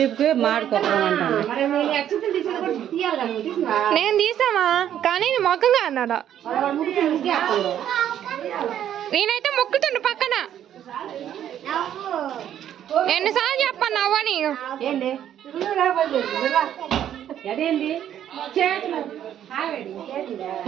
మాడుకోవడం అంటాను. నేను తీసామా కానీ మొక్కగా అన్నాడా. నేనైతే మొక్కుతుండు పక్కన. ఎన్నిసార్లు చెప్పాను నవ్వని. అదేంటి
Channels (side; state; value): left; quieter; 10.5 dB